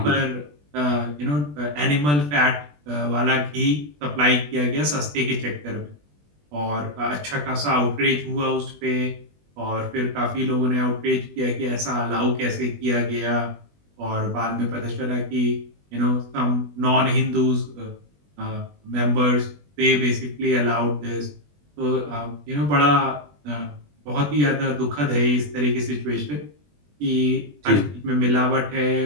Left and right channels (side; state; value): left; late; 20 ms